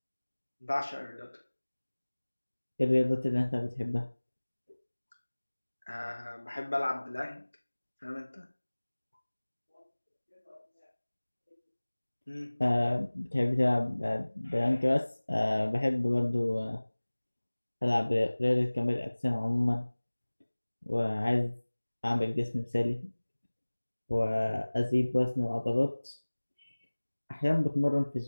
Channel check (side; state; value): both; inverted; correlation -1.00